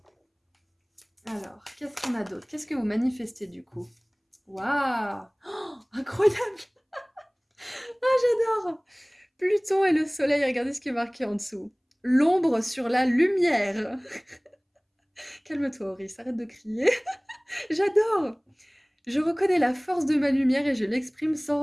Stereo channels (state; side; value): identical; both; correlation 1.00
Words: Alors, qu'est-ce qu'on a d'autre? Qu'est-ce que vous manifestez du coup? Waouh! Oh, incroyable! J'adore! Pluton et le soleil, regardez ce qui est marqué en dessous. L'ombre sur la lumière. Calme-toi, Auris, arrête de crier. J'adore! Je reconnais la force de ma lumière et je l'exprime sans